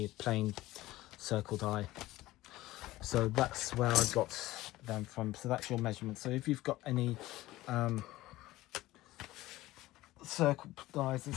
plain circle die. So that's where I got them from. So that's your measurement. So if you've got any circle dies and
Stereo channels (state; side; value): quieter; right; 17.3 dB